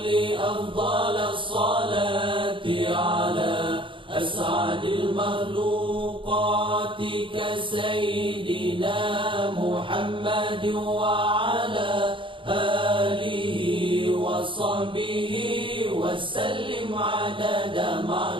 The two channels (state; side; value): late; left; 0.25 ms